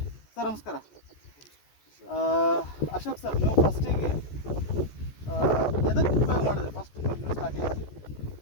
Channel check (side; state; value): right; late; 14 ms